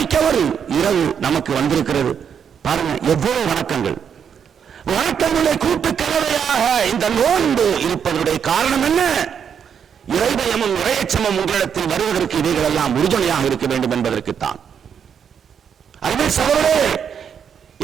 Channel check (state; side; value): quieter; left; 7.6 dB